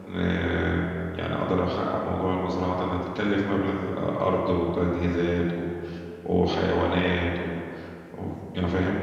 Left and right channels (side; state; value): both; identical; correlation 1.00